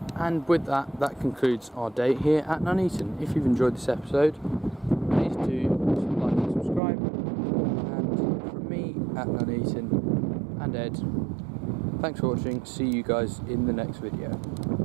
And with that, that concludes our day here at Nuneaton. If you've enjoyed this episode, please do like and subscribe. At Nuneaton and Ed, thanks for watching. See you guys in the next video.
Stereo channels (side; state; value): left; drops out; at 6.8 s